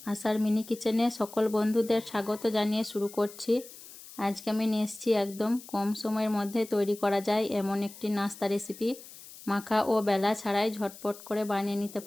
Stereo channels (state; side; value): noise; left; hiss, 17 dB below the sound